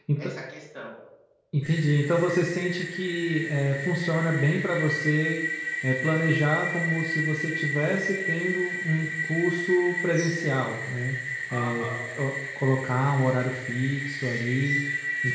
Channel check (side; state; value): both; identical; correlation 1.00